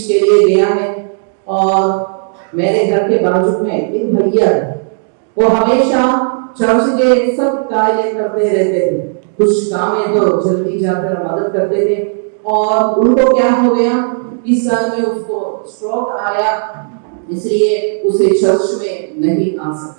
के लिए गया है और मेरे घर के बाजू में एक भैया है, वो हमेशा चर्च के सब कार्य करते रहते थे। कुछ काम है तो जल्दी जाकर मदद करते थे और उनको क्या हो गया, इस साल में उसको स्ट्रोक आया, इसलिए उसे चर्च में नहीं आ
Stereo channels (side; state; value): left; silent; digital silence